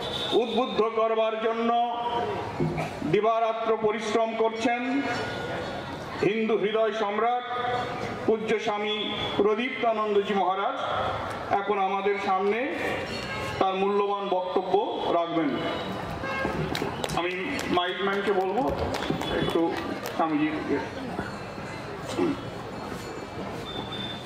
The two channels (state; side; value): identical; both; correlation 1.00